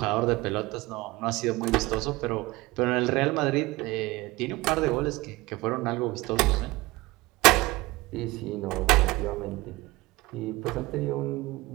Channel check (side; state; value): left; quieter; 20.9 dB